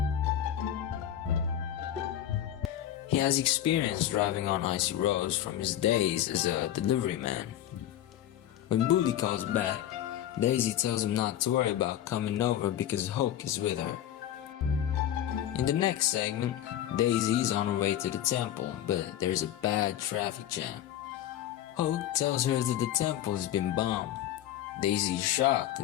has experience driving on icy roads from his days as a delivery man. When Bully calls back, Daisy tells him not to worry about coming over because Hoke is with her. In the next segment, Daisy is on her way to the temple, but there's a bad traffic jam. Hoke tells her that the temple has been bombed. Daisy is shocked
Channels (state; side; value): quieter; right; 11.6 dB